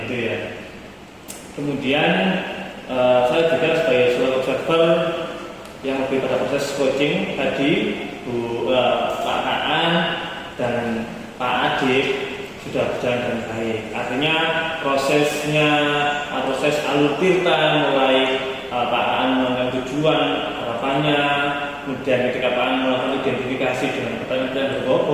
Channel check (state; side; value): identical; both; correlation 1.00